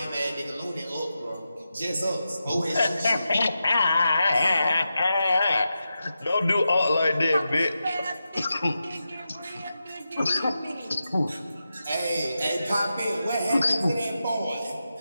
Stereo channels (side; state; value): both; inverted; correlation -0.90